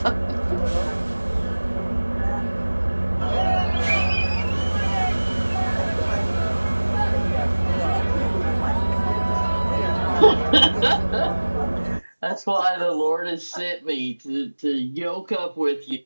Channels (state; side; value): inverted; both; correlation -1.00